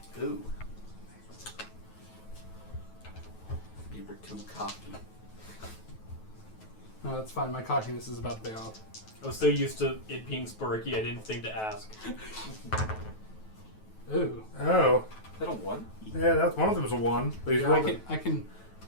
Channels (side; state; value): right; late; 9.2 ms